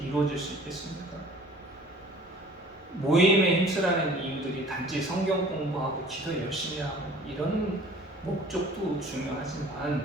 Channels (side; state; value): both; normal; correlation 0.48